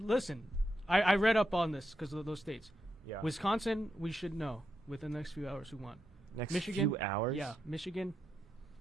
I read up on this because of those states. Yeah. Wisconsin, we should know within the next few hours who won. Next Michigan, few hours? Yeah. Michigan,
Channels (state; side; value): normal; both; correlation 0.84